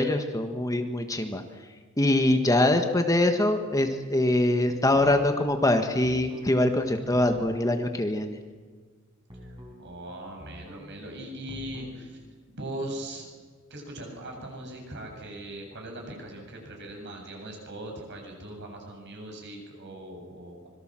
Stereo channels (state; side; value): normal; both; correlation 0.67